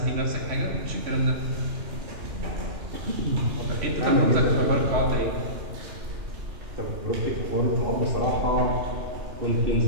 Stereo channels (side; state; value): left; late; 3.1 ms